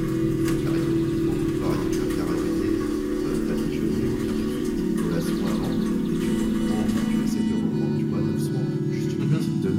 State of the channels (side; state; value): both; identical; correlation 1.00